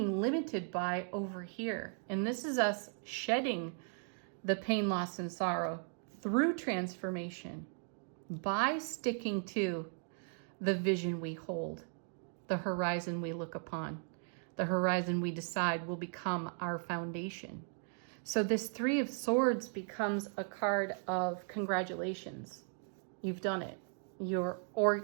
limited by over here. And this is us shedding the pain, loss, and sorrow through transformation by sticking to the vision we hold, the horizon we look upon. The horizon we decide will become our foundation. So this 3 of Swords becomes a card of congratulations. You've done it. You're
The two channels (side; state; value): left; silent; 53 dB below the other